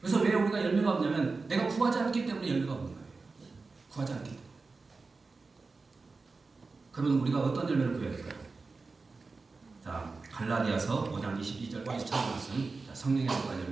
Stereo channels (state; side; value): quieter; left; 4.0 dB